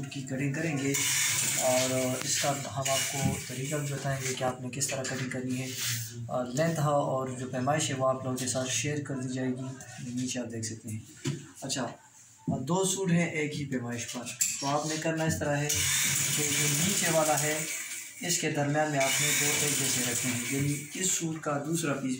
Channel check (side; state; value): both; identical; correlation 1.00